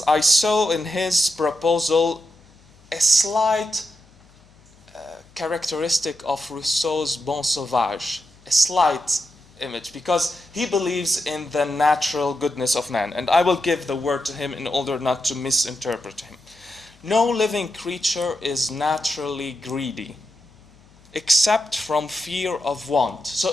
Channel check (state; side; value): noise; left; hum, 28 dB below the sound